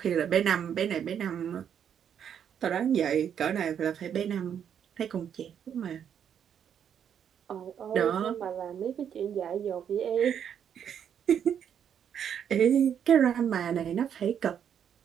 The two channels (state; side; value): quieter; left; 8.6 dB